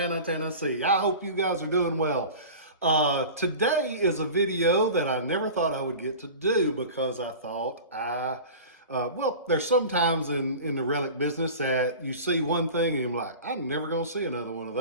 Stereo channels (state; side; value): inverted; both; correlation -0.36